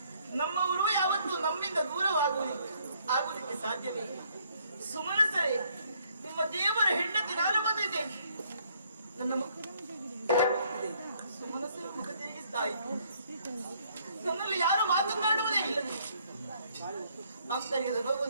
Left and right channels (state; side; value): inverted; both; correlation -0.66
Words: ನಮ್ಮವರು ಯಾವತ್ತೂ ನಮ್ಮಿಂದ ಆಗುವುದಕ್ಕೆ ಸಾಧ್ಯವೇ ಇಲ್ಲ. ಸುಮನಸರೇ, ನಿಮ್ಮ ದೇವರ ಹೆಂಡತಿ ನಾನು ಬಂದಿದ್ದೇನೆ. ನನ್ನ ಸುಮನಸರು ಮುಖ ತಿರುಗಿಸ್ತಾ ಇತ್ತು. ನನ್ನಲ್ಲಿ ಯಾರು ಮಾತನಾಡುವುದೇ ಇಲ್ಲ. ಆಂತರ್ಯದ